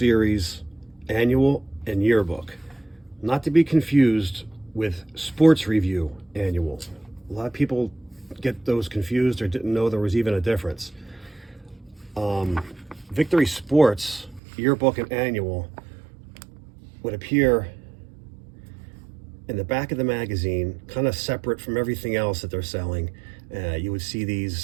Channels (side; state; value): left; drops out; at 14.4 s